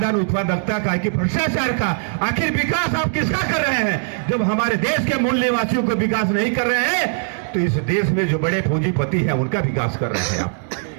उत्पादकता का, कि भ्रष्टाचार का? आखिर विकास आप किसका कर रहे हैं? जब हमारे देश के मूल निवासियों का विकास नहीं कर रहे हैं तो इस देश में जो बड़े पूंजीपति हैं उनका विकास कर रहे हैं आप।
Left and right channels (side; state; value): left; silent; digital silence